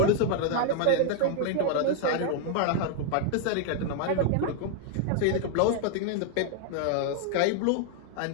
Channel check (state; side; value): different; both; correlation 0.00